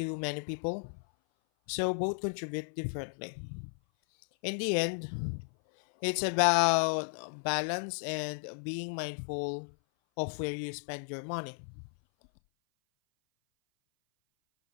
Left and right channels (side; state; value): right; silent; 55 dB below the other